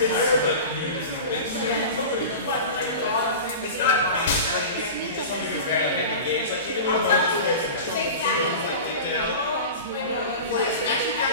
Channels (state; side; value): inverted; both; correlation -0.32